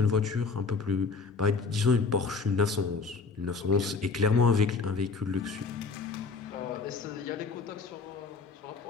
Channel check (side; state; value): right; quieter; 4.5 dB